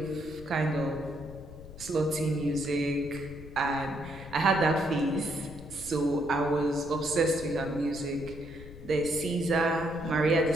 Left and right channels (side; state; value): left; noise; rumble, 15 dB below the sound